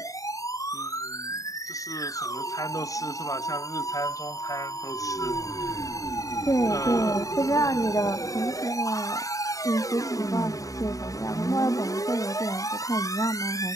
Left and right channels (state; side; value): late; right; 0.16 ms